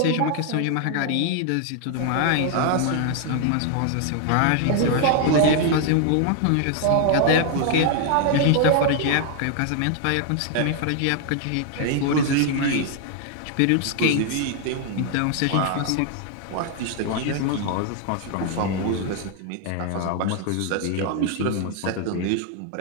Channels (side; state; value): both; different; correlation 0.00